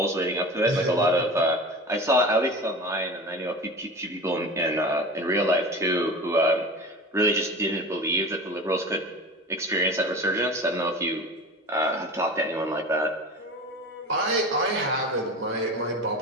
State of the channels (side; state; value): both; normal; correlation 0.33